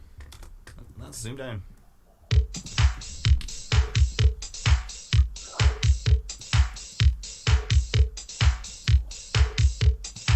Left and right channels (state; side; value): identical; both; correlation 1.00